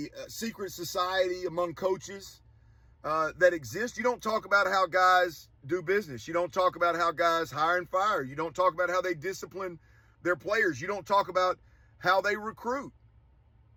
secret society among coaches that exists. You don't talk about how guys do business. You don't talk about how guys hire and fire. You don't talk about how they discipline their players. You don't talk about how they recruit.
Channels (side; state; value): both; identical; correlation 1.00